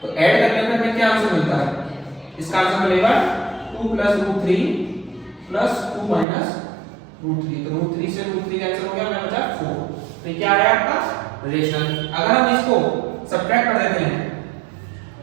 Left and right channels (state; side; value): drops out; left; at 6.2 s